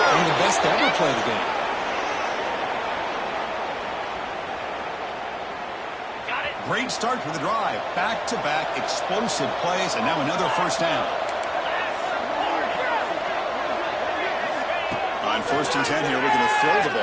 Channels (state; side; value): identical; both; correlation 1.00